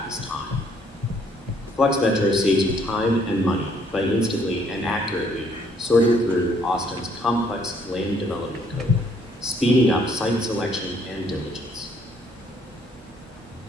is time. Flex Metro saves you time and money by instantly and accurately sorting through Austin's complex land development code, speeding up site selection and diligence.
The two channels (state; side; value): normal; both; correlation 0.66